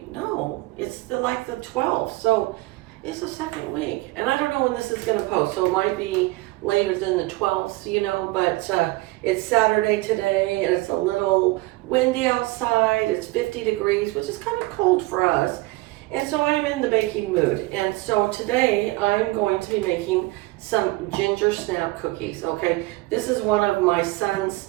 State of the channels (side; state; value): left; quieter; 21.0 dB